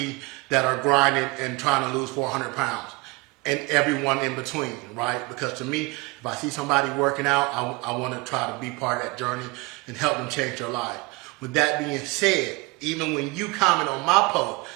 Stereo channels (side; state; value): left; quieter; 25.2 dB